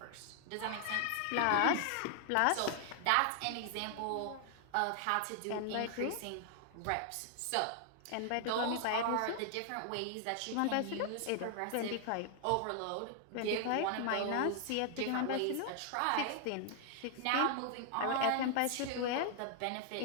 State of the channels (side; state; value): both; different; correlation 0.00